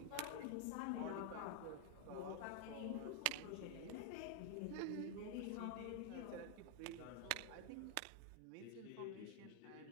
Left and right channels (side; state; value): both; different; correlation 0.00